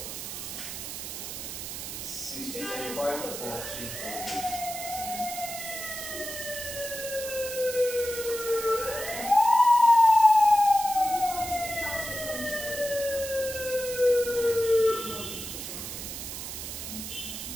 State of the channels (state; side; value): noise; right; hiss, 8 dB below the sound